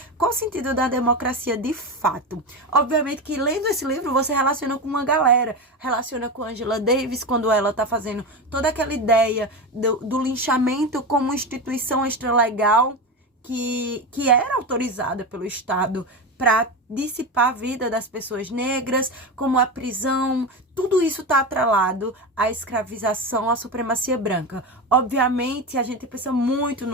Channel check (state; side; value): normal; both; correlation 0.19